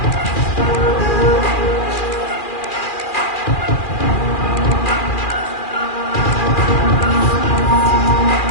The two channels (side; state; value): right; late; 2.4 ms